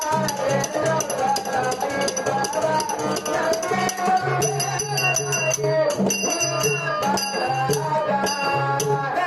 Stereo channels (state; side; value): identical; both; correlation 1.00